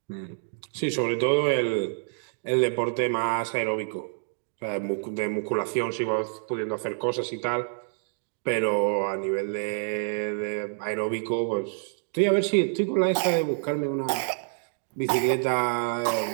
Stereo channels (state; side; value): silent; left; digital silence